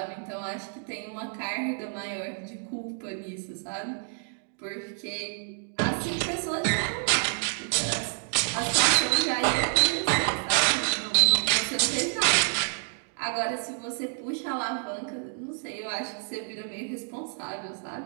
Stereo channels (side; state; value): left; silent; 59 dB below the other